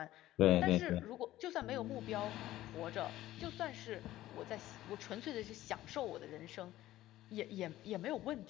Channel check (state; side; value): quieter; right; 15.0 dB